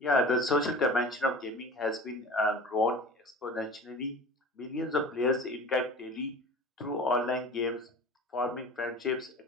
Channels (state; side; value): normal; both; correlation 0.38